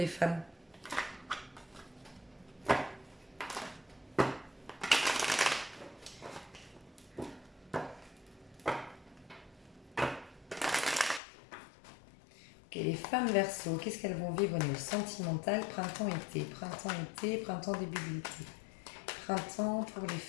femmes. Ok, les femmes Verseau, qu'est-ce qu'elles vont vivre au niveau sentimental? Printemps-été, printemps-été, printemps début d'été. Printemps pour les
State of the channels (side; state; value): right; drops out; at 11.2 s